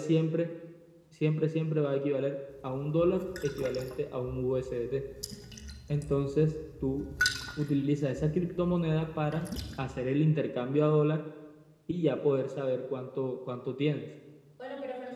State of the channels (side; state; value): both; identical; correlation 1.00